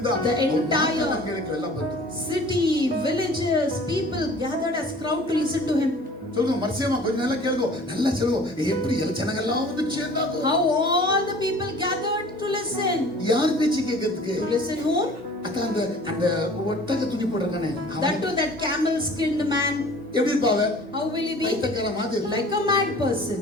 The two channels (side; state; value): both; normal; correlation 0.47